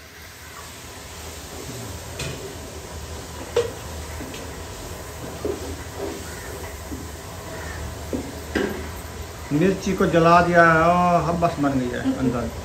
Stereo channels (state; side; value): identical; both; correlation 1.00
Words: मिर्ची को जला दिया है और हब्बस बन गई है अंदर,